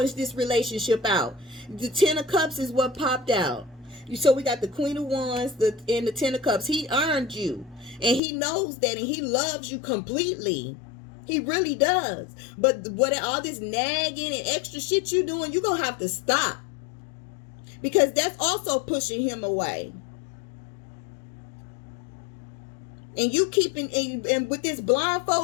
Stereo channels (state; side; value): drops out; right; at 8.2 s